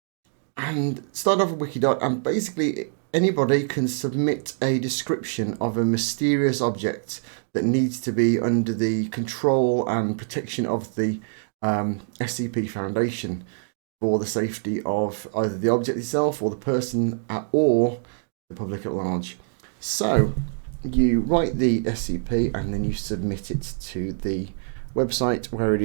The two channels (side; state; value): left; silent; digital silence